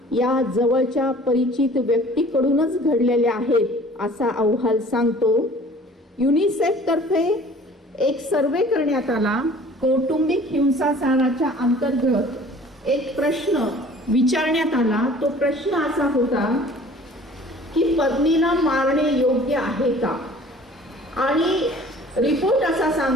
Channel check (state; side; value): normal; both; correlation 0.49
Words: या जवळच्या परिचित व्यक्तीकडूनच घडलेल्या आहेत असा अहवाल सांगतो. युनिसेफ तर्फे एक सर्वे करण्यात आला. कौटुंबिक हिंसाचाराच्या अंतर्गत एक प्रश्न विचारण्यात आला. तो प्रश्न असा होता की पत्नीला मारणे योग्य आहे का? आणि रिपोर्ट असा